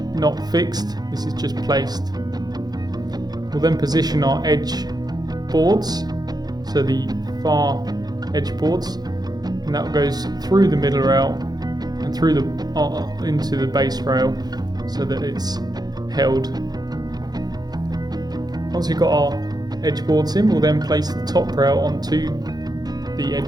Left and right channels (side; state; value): left; late; 0.19 ms